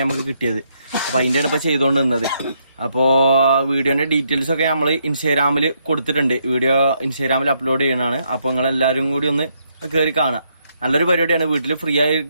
നമുക്ക് കിട്ടിയത്. അപ്പൊ അതിന്റെയാണ് ഇപ്പൊ ചെയ്തോണ്ട് നിന്നത്. അപ്പോ വീഡിയോന്റെ ഡീറ്റെയിൽസ് ഒക്കെ നമ്മൾ ഇൻസ്റ്റാഗ്രാമിൽ കൊടുത്തിട്ടുണ്ട്. വീഡിയോ ഇൻസ്റ്റാഗ്രാമിൽ അപ്ലോഡ് ചെയ്യണതാണ്. അപ്പൊ നിങ്ങൾ എല്ലാവരും കൂടി ഒന്ന് കയറി കാണാം. നല്ലൊരു പരിപാടിയാണ്. വീട്ടിൽ ഫ്രീ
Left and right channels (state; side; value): inverted; both; correlation -0.75